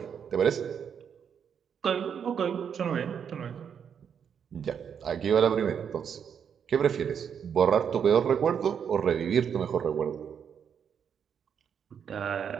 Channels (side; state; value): left; quieter; 7.6 dB